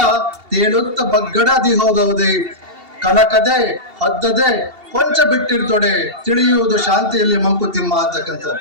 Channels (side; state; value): left; late; 2.7 ms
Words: ತೇಲುತ್ತ ಬಗ್ಗಡದಿ ಹೋದವುದೇ. ಕನಕದೆ ಹದ್ದದೆ ಕೊಂಚ ಬಿಟ್ಟಿರ್ತೊಡೆ ತಿಳಿಯುವುದು ಶಾಂತಿಯಲ್ಲಿ ಮಂಕುತಿಮ್ಮ